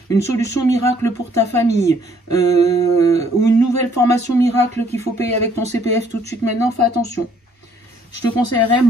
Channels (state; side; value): normal; both; correlation 0.64